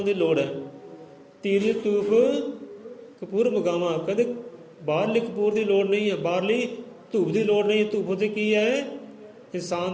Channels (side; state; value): both; identical; correlation 1.00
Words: ਦੀ ਲੋੜ ਹੈ। ਧੀਰਜ ਧੂਫ ਕਪੂਰ ਮਗਾਵਾਂ, ਕਹਿੰਦੇ ਬਾਹਰਲੀ ਕਪੂਰ ਦੀ ਲੋੜ ਨਹੀਂ ਹੈ, ਬਾਹਰਲੀ ਧੂਪ ਦੀ ਲੋੜ ਨਹੀਂ ਹੈ। ਧੂਪ ਉੱਤੇ ਕੀ ਹੈ? ਇਨਸਾਨ